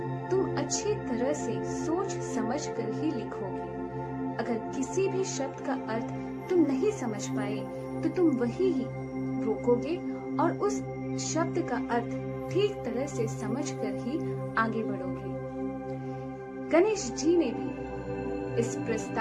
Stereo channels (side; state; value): both; identical; correlation 1.00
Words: तुम अच्छी तरह से सोच समझ कर ही लिखोगे। अगर किसी भी शब्द का अर्थ तुम नहीं समझ पाए तो तुम वही ही रोकोगे और उस शब्द का अर्थ ठीक तरह से समझ कर ही आगे बढ़ोगे। गणेश जी ने भी इस